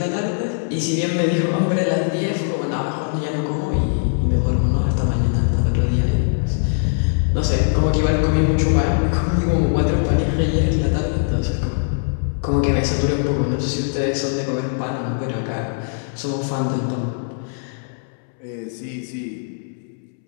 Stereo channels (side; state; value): right; silent; 65 dB below the other